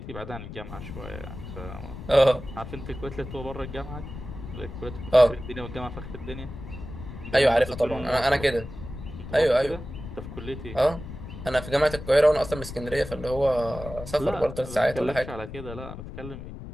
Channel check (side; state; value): left; noise; rumble, 11 dB below the sound